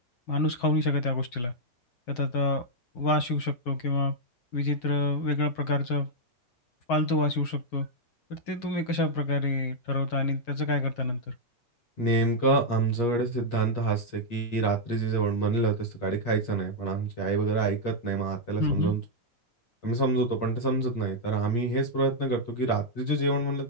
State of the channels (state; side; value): late; right; 8.5 ms